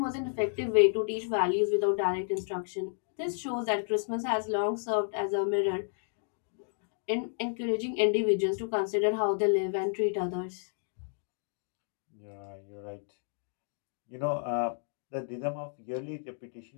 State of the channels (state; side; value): silent; right; digital silence